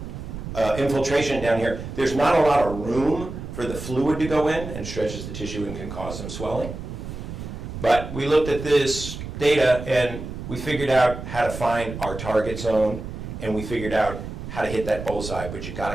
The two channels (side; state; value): right; noise; rumble, 9 dB below the sound